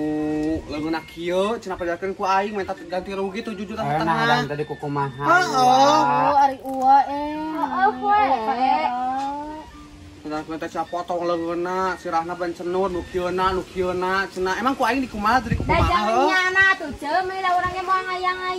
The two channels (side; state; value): both; identical; correlation 1.00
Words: leungeunna kieu cenah pajakeun ku aing minta ganti rugi 7 juta setengah. Nah, tadi ku kumaha. Oh, ari ua Heeh, we. Kita sia potong leungeunna sirahna ban cenur nu kieuna cenah emang ku aing di kumaha tadi ku Da kumaha. jangan nyana tuh ceu meh da urang ge moal